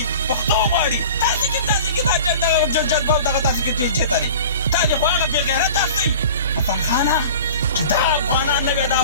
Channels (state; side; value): inverted; both; correlation -0.40